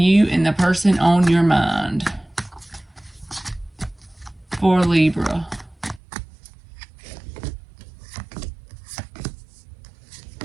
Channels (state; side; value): drops out; left; at 6.0 s